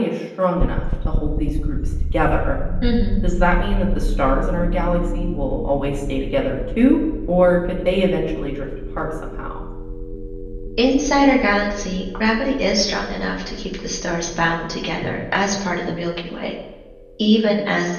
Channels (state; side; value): identical; both; correlation 1.00